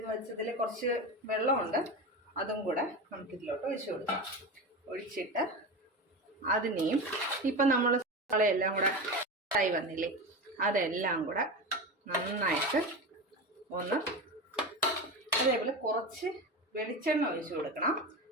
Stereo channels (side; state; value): both; normal; correlation 0.23